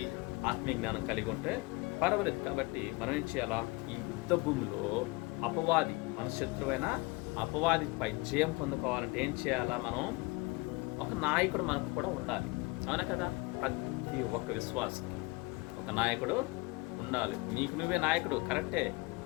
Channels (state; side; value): quieter; right; 25.0 dB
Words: ఆత్మీయ జ్ఞానం కలిగి ఉంటే పర్వాలేదు. కాబట్టి మనం ఏం చేయాలా? ఈ యుద్ధ భూమిలో అపవాది, మన శత్రువైన అపవాదిపై జయం పొందుకోవాలంటే ఏం చేయాలా? మనం ఒక నాయకుడు మనకు కూడా ఉండాలి. అవునా కదా? ప్రతి ఒక్క విశ్వాసకి ఒక నాయకుడు ఉండాలి. నీకు నువ్వే నాయకుడు కరెక్టే,